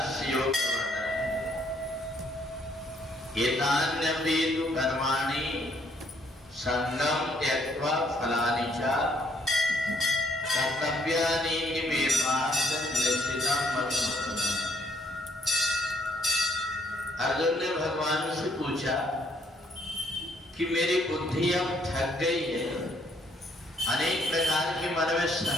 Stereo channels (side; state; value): both; normal; correlation 0.68